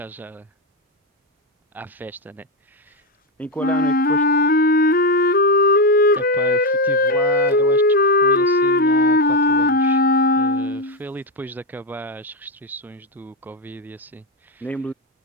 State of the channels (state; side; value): normal; both; correlation 0.07